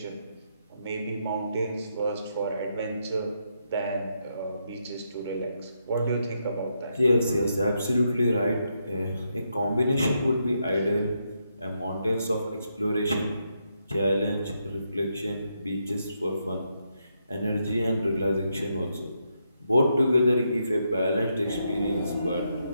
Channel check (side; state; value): both; inverted; correlation -0.80